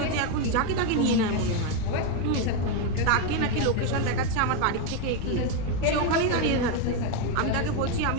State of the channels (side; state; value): both; different; correlation 0.02